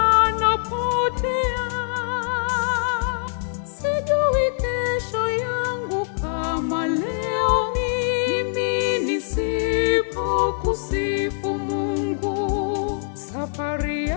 Sijui kesho yangu kama leo mimi nisipokusifu Mungu. Safari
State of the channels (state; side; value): silent; right; digital silence